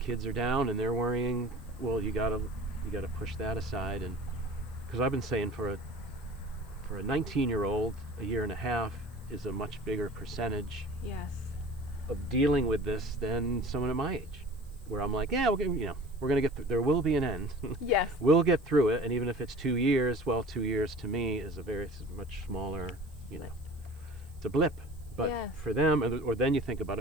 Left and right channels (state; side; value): noise; right; hiss, 29 dB below the sound